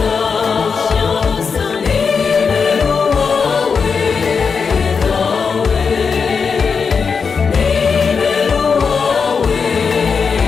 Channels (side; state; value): right; quieter; 5.6 dB